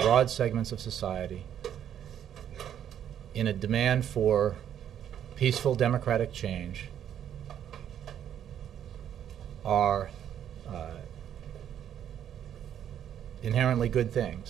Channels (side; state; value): left; quieter; 9.8 dB